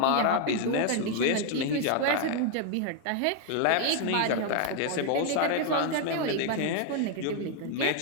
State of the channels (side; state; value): both; different; correlation 0.00